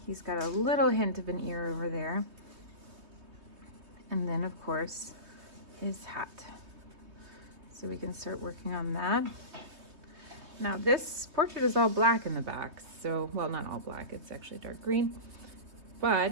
He's got a little hint of an ear over there. And then, of course, his hat. So we can start working on that. Now this portrait is all black in the back, so, well, not all black, it's actually dark green.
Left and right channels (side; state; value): left; late; 3.2 ms